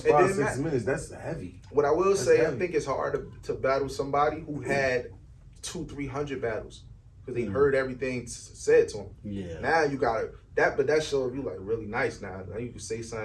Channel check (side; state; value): both; identical; correlation 1.00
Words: 5-6 minutes. That's heavy. What I will say, heavy. I think it's hard to battle somebody who had 200-300 battles because they heard everything said to them. Yeah. Now you got that, but that shows you like really nice. Now you can say